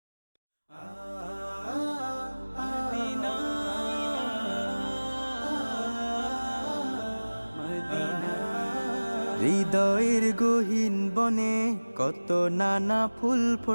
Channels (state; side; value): inverted; both; correlation -1.00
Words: হৃদয়ের গহীন বনে কত নানা ফুল